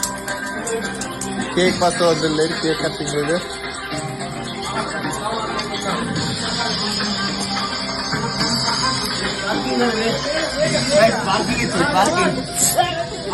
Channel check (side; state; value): both; identical; correlation 1.00